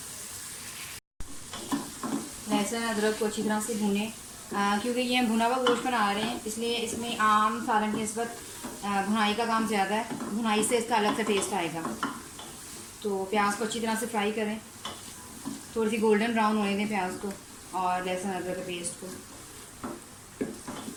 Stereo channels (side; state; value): both; identical; correlation 1.00